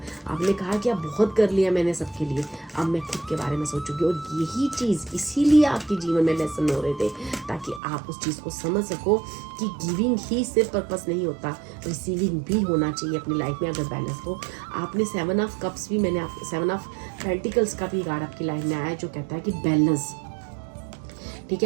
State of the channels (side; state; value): left; drops out; at 7.8 s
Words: आपने कहा कि अब बहुत कर लिया मैंने सबके लिए, अब मैं खुद के बारे में सोचूंगी। और यही चीज़, इसीलिए आपके जीवन में लेसन हो रहे थे, ताकि आप उस चीज़ को समझ सको कि गिविंग ही सिर्फ पर्पस नहीं होता, रिसीविंग भी होना चाहिए अपनी लाइफ में अगर बैलेंस हो। आपने 7 ऑफ कप्स भी, मैंने आप 7 ऑफ पेंटिकल्स का भी कार्ड आपकी लाइफ में आया है, जो कहता है कि बैलेंस, ठीक